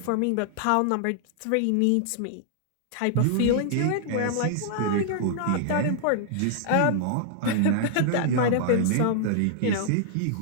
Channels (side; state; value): both; different; correlation -0.01